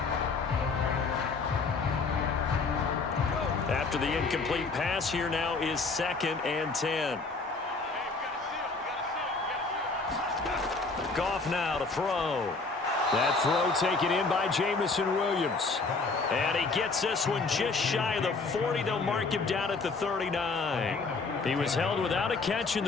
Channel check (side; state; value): right; quieter; 4.0 dB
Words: after the incomplete pass. Here now is 2nd and 10. Goff now to throw. That throw taken in by Jamison Williams. And he gets this one just shy of the 40. They'll mark him down at the 39. He was held without a catch in